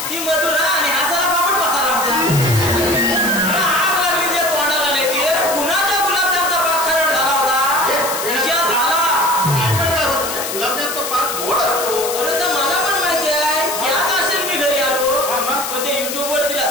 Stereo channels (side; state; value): left; noise; hiss, 5 dB below the sound